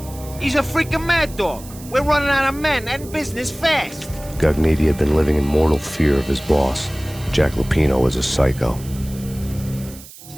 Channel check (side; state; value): right; noise; hiss, 18 dB below the sound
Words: He's a freaking mad dog. We're running out of men and business fast. Gognitti had been living in mortal fear of his boss. Jack Lupino was a psycho.